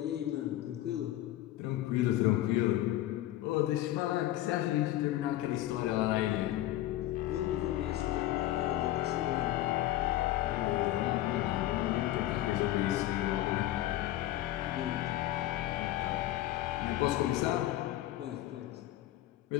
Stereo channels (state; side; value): quieter; right; 14.6 dB